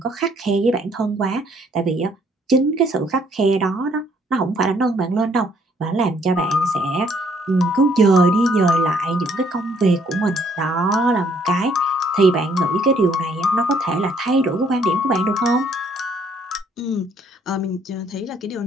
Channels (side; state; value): both; normal; correlation 0.65